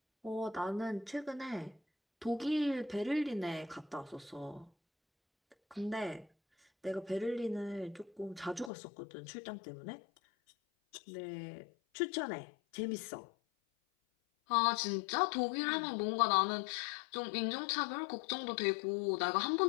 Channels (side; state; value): right; drops out; at 8.7 s